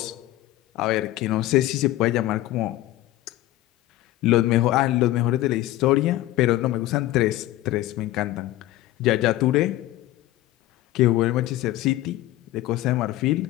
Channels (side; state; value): right; quieter; 15.9 dB